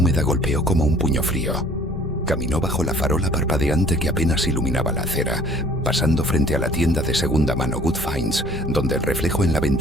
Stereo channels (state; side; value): normal; both; correlation 0.54